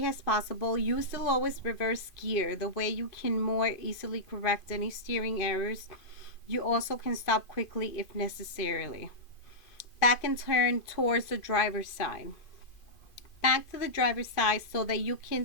as possible. Use the lowest reverse gear, the way you can more easily correct any steering errors. You also can stop quickly if necessary. Back and turn towards the driver's side. Back to the driver's side so that you can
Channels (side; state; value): right; late; 2.5 ms